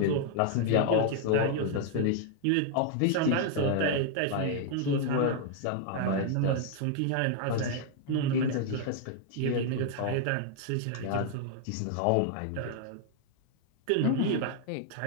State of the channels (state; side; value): different; both; correlation 0.00